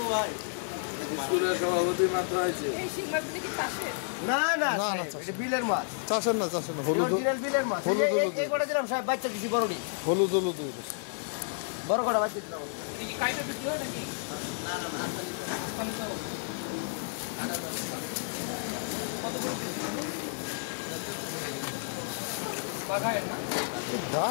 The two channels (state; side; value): silent; right; 57 dB below the other